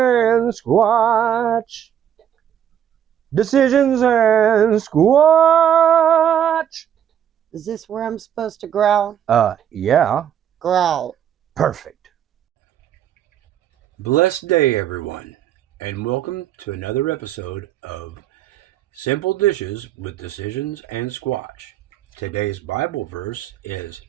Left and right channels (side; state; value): left; quieter; 9.7 dB